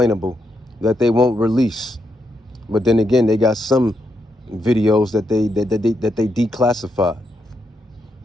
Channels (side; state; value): both; normal; correlation 0.81